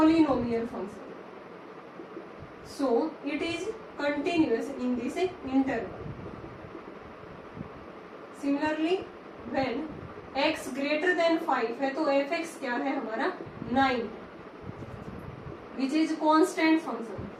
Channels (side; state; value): both; identical; correlation 1.00